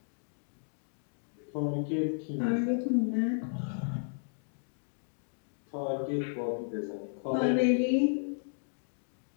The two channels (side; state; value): right; silent; digital silence